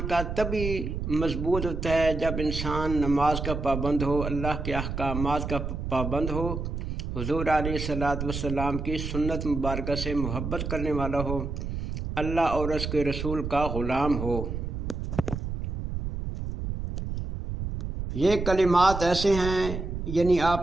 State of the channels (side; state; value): right; noise; rumble, 4 dB below the sound